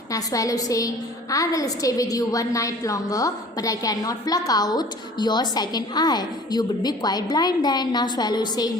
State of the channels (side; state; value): both; normal; correlation 0.47